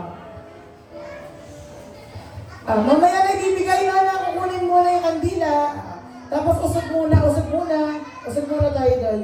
Mamaya na ibibigay Nona. Kukunin muna yung kandila. Tapos usog muna. Usog muna tayo daw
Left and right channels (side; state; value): both; identical; correlation 1.00